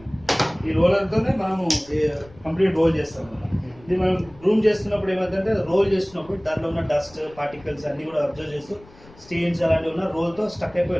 ఈ రోలర్తోనే మనము కంప్లీట్ రోల్ చేస్తాం. ఇది మనం రూమ్ చేస్తున్నప్పుడు ఏమైందంటే రోల్ చేస్తున్నప్పుడు దాంట్లో ఉన్న డస్ట్ పార్టికల్స్ అన్నీ కూడా అబ్జర్వ్ చేస్తూ స్టెయిన్స్ అలాంటివి ఉన్న రోల్తో స్టక్ అయిపోయి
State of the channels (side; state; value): left; noise; rumble, 24 dB below the sound